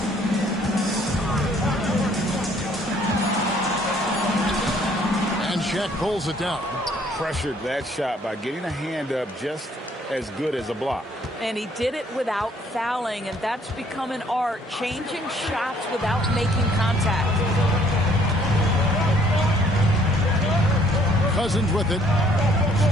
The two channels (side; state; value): both; normal; correlation 0.62